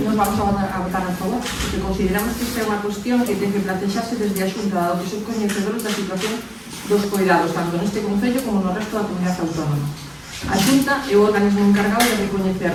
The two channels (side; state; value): both; identical; correlation 1.00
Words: Nos vamos a votar a favor, porque consideramos que esta é unha cuestión que ten que plantexarse desde a Xunta, dado que son coñecedores da situación dos cuidados, tanto neste Concello como no resto da comunidade autónoma. A Xunta é o organismo encargado de recoñecer